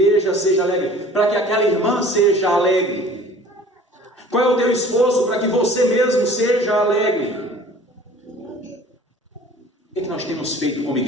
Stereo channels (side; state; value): both; normal; correlation 0.48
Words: seja alegre? Para que aquela irmã seja alegre? Qual é o teu esforço para que você mesmo seja alegre? O que é que nós temos feito como